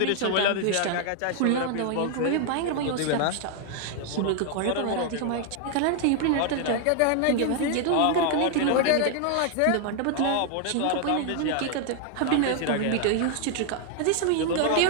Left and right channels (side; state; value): both; different; correlation 0.00